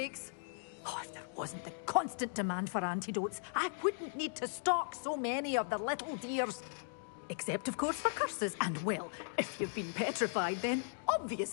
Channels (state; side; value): silent; right; digital silence